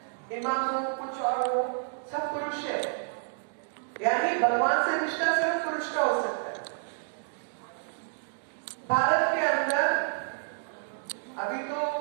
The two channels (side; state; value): left; silent; digital silence